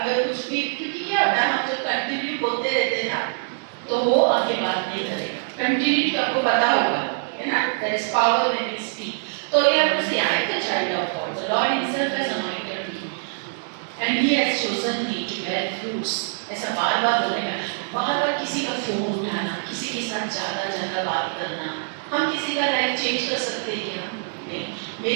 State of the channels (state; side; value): silent; left; digital silence